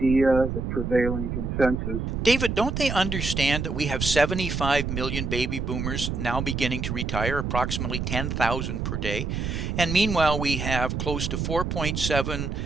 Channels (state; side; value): noise; right; rumble, 3 dB below the sound